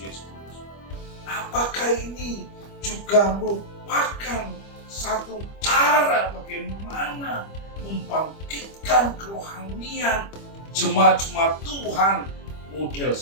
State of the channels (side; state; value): right; late; 25 ms